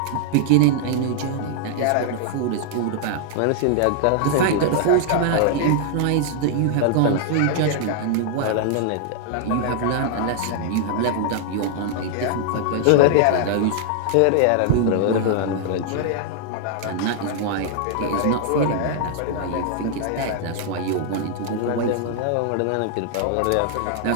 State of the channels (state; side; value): different; both; correlation 0.00